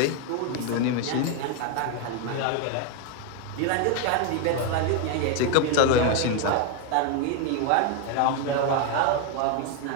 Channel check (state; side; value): different; both; correlation 0.01